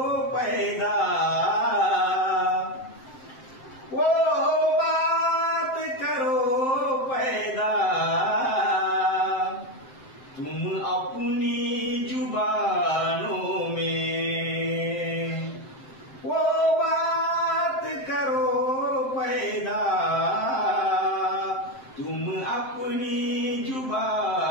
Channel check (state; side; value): late; right; 7.7 ms